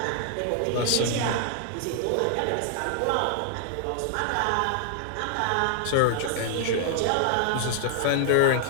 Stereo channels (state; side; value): different; both; correlation -0.01